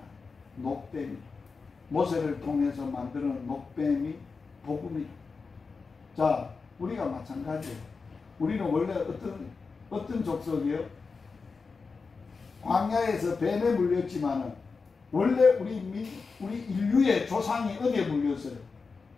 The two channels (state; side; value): quieter; right; 4.6 dB